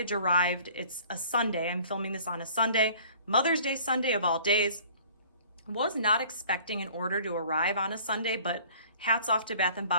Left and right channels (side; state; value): both; inverted; correlation -0.50